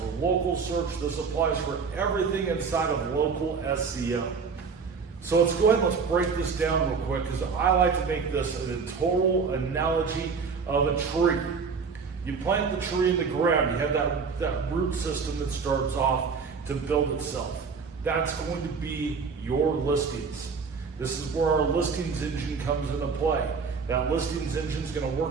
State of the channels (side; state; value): left; quieter; 5.4 dB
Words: local search, this applies for everything inside of local SEO. So let's go ahead and let's break this down real quick, because I like to make this a total analogy of a tree. You plant the tree in the ground, you have that root system that starts off to build itself. That's going to be your listings. This is where our listings engine comes into play. That listings engine is going to